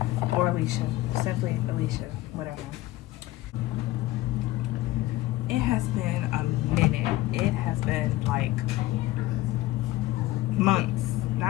or Alicia. Simply Alicia, whatever. It has been a minute. It has been like months,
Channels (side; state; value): right; quieter; 17.1 dB